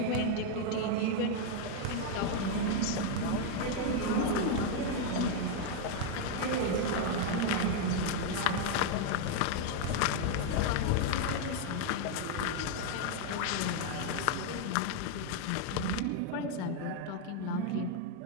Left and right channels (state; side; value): different; both; correlation 0.00